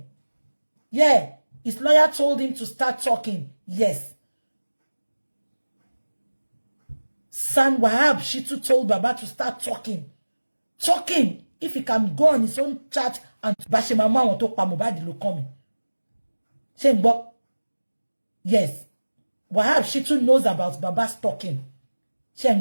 yeah his lawyer told him to start talking yes San Wahab Shitu told baba to start talking if he can go on his own chat and bashe mama won to pa Mohbad ló kàn mí ṣé ń gbọ́ yes Wahab Shitu knows about baba's talking ṣé ń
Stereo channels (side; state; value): both; inverted; correlation -1.00